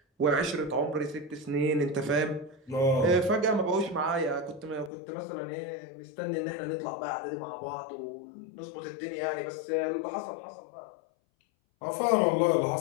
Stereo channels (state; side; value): drops out; right; at 4.9 s